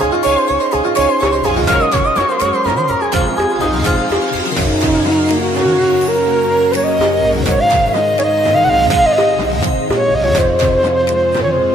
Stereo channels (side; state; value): both; normal; correlation 0.73